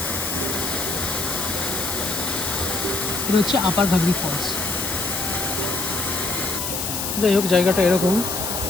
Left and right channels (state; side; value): noise; left; hiss, 3 dB below the sound